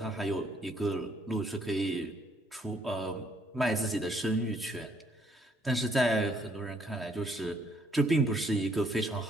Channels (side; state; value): both; normal; correlation 0.68